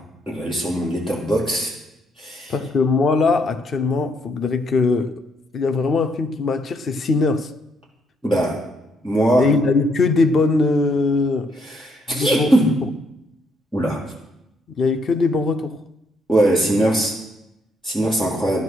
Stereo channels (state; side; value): normal; both; correlation 0.73